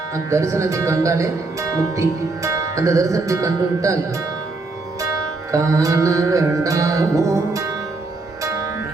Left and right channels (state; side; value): quieter; left; 3.4 dB